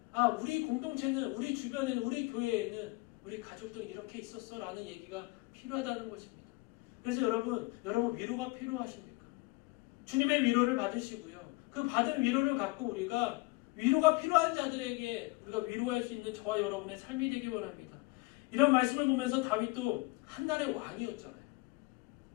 우리 공동체는, 우리 주변에는, 우리 교회에는 우리 가족들이 이렇게 있었어 라는 얘기가 필요하다는 것입니다. 그래서 여러분 위로가 필요하십니까? 주님의 위로를 받으시고요. 그 받은 위로를 갖고 우리가 위로가 필요한 자들에게 우리가 위로할 수 있는 저와 여러분의 삶이 되기 원합니다. 이런 말씀을 보면서 다윗도 한 날의 왕이었잖아요.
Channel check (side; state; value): right; quieter; 24.5 dB